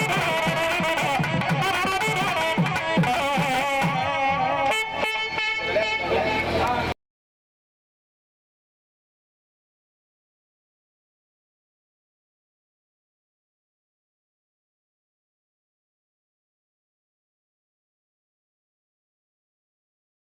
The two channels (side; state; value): both; identical; correlation 1.00